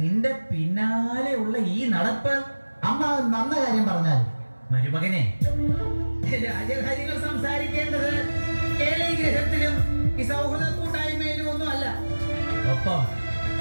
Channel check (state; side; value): inverted; both; correlation -1.00